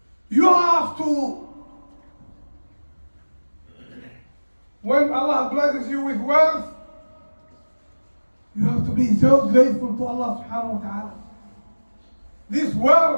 You have to, when Allah blesses you with wealth, you have to be so grateful to Allah subhanahu wa ta'ala. This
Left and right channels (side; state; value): both; inverted; correlation -1.00